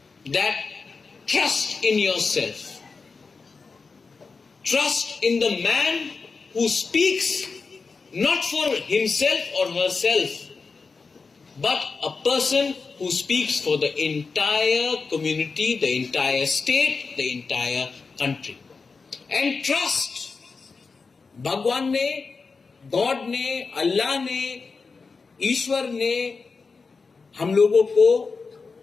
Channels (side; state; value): right; quieter; 4.6 dB